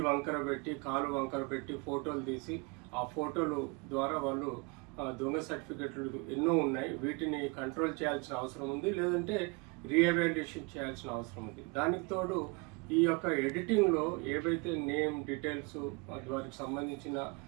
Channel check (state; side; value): quieter; left; 29.6 dB